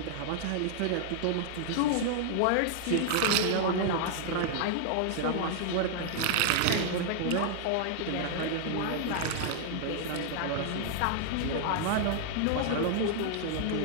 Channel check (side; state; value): both; different; correlation -0.01